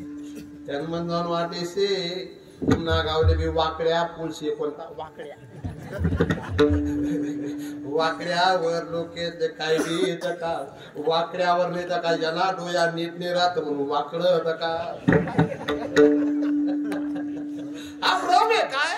त्यांना जाऊन वाटेसे पुन्हा गावले बी वाकड्या पुलशे. कोणता वाकड्या? वाकड्यावर लोक काय का वाकड्यावर नाही का ज्याला डोया नीट नाही राहत म्हणून वाकड का. हा भ्रम आहे काय?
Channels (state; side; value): identical; both; correlation 1.00